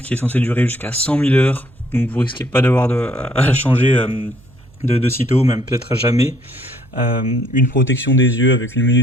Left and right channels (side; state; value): right; noise; hum, 27 dB below the sound